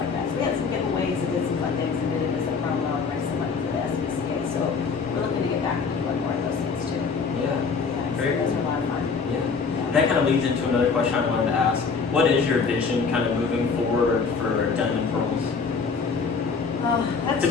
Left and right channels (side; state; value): right; quieter; 5.2 dB